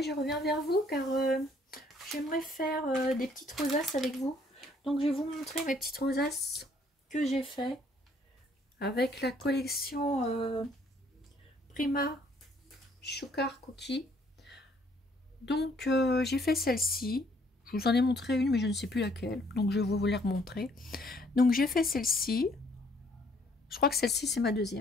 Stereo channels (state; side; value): normal; both; correlation 0.64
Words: je reviens vers vous car j'aimerais faire des petites rosaces avec vous. Donc je vais vous montrer mes petites rosaces que j'ai fait avec la collection Prima Sugar Cookie. Donc j'ai fait celle-ci, je vous en ai montré une mais je ne sais plus laquelle, donc je vais vous les remontrer. Donc j'ai fait celle-ci, je crois que celle-ci c'est ma